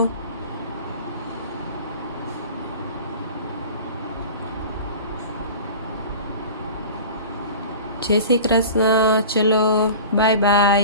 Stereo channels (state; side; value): inverted; both; correlation -0.38